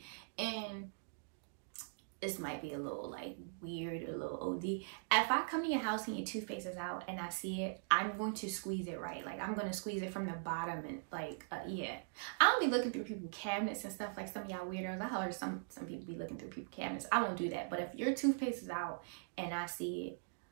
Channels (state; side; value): silent; left; digital silence